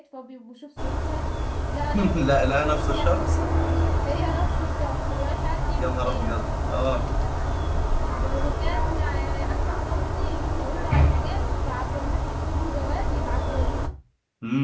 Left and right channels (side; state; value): both; identical; correlation 1.00